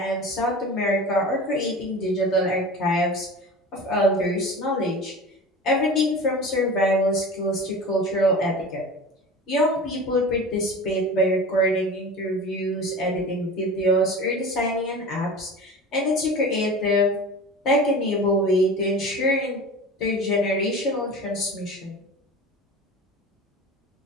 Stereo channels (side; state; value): both; normal; correlation 0.34